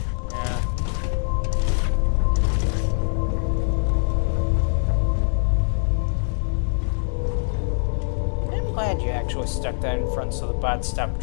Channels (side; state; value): right; silent; digital silence